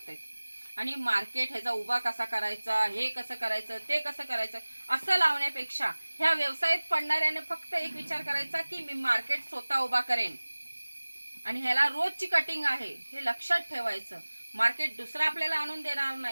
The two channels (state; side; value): inverted; both; correlation -1.00